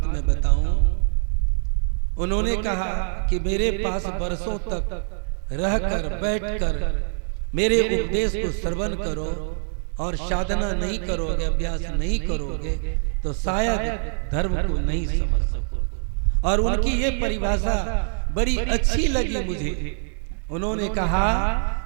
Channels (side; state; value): left; silent; digital silence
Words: मैं बताऊं। उन्होंने कहा कि मेरे पास वर्षों तक रहकर, बैठकर मेरे उपदेश को श्रवण करो और साधना नहीं करोगे, अभ्यास नहीं करोगे, तो शायद धर्म को नहीं समझ सकोगे। और उनकी ये परिभाषा बड़ी अच्छी लगी मुझे। उन्होंने कहा,